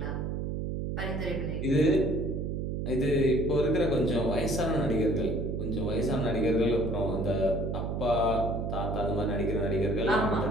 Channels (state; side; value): noise; right; hum, 2 dB below the sound